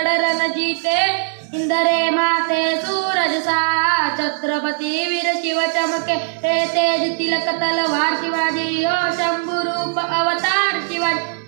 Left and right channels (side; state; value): left; silent; digital silence